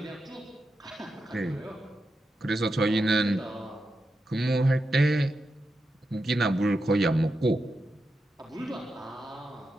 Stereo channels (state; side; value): normal; both; correlation 0.88